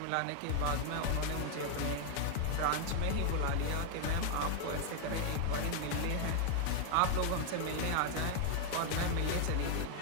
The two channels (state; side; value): different; both; correlation 0.00